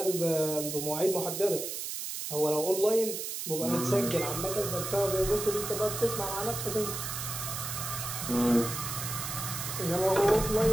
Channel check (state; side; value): noise; right; hiss, 5 dB below the sound